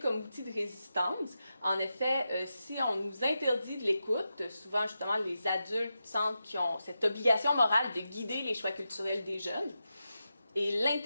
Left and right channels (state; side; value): inverted; both; correlation -0.89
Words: outil de résistance. En effet, si on nous interdit de l'écoute, souvent justement les adultes sentent qu'ils ont cette obligation morale de guider les choix culturels des jeunes. Et